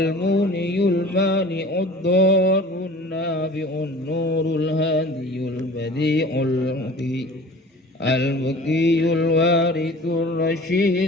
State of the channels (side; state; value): both; normal; correlation 0.43